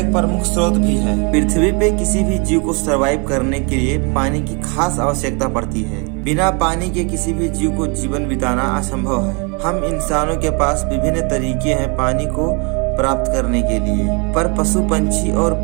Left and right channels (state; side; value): quieter; left; 33.2 dB